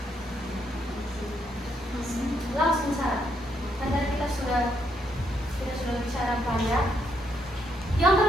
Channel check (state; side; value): normal; both; correlation 0.76